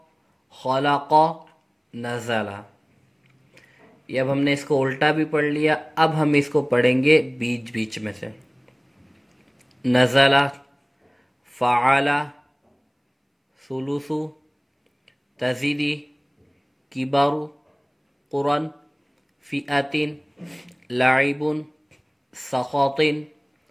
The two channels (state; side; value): identical; both; correlation 1.00